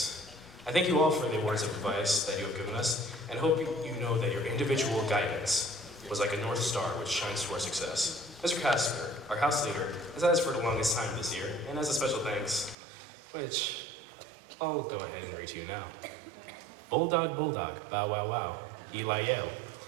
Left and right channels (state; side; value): drops out; left; at 12.8 s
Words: I thank you all for the words of advice that you have given us, and hope you know that your individual guidance was like a North Star which shines to our success. Mr. Casper, our house leader, has had us for the longest time this year, and as a special thanks, which I'll go ahead and read to you now. Bulldog, bulldog, bow wow wow, Eli Yale.